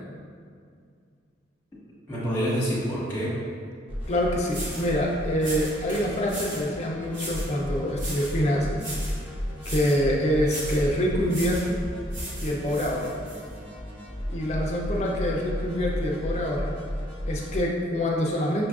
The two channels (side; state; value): both; normal; correlation 0.63